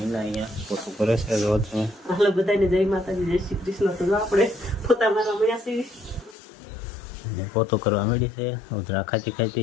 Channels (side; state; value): right; drops out; at 6.4 s